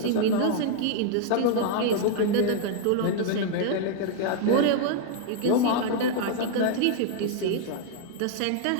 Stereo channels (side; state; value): both; different; correlation 0.00